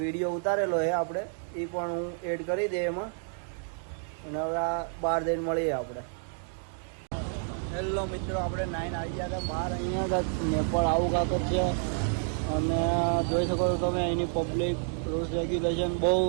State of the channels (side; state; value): left; silent; 58 dB below the other